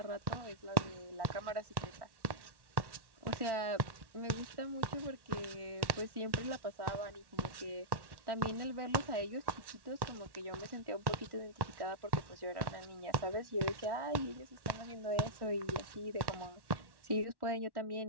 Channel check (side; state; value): left; late; 1.1 ms